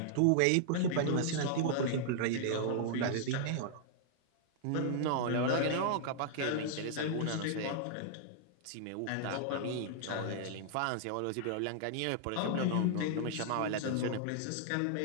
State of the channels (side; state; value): both; different; correlation -0.01